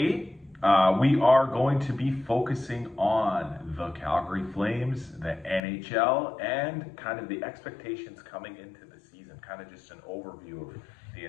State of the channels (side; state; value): right; drops out; at 5.6 s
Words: we are going to be focusing on the Calgary Flames, the NHL, and kind of the expectations coming into the season. Kind of just an overview of the